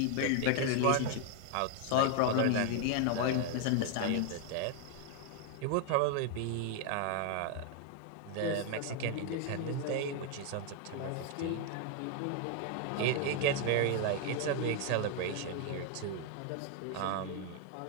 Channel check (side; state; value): both; different; correlation 0.00